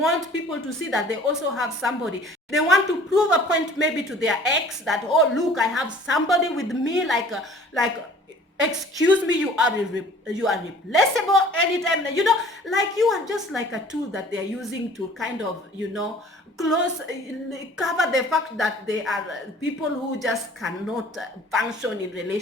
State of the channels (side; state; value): both; normal; correlation 0.50